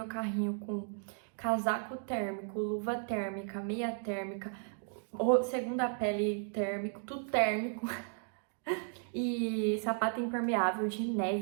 carrinho com casaco térmico, luva térmica, meia térmica, segunda pele térmico, tudo térmico. E sapato impermeável de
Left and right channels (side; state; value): left; silent; 55 dB below the other